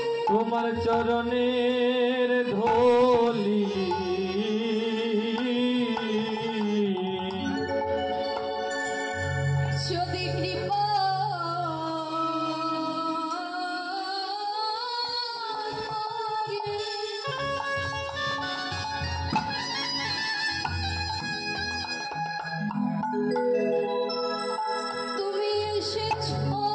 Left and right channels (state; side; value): identical; both; correlation 1.00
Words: তোমার চরণের ধূলি যদি কৃপা তুমি এসেছো